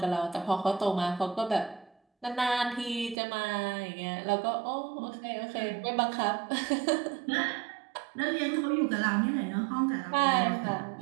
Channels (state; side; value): drops out; left; at 3.2 s